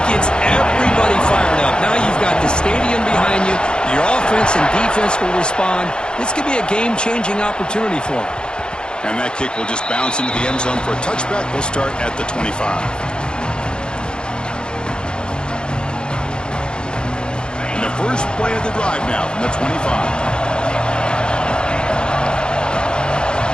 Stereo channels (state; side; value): late; right; 0.049 ms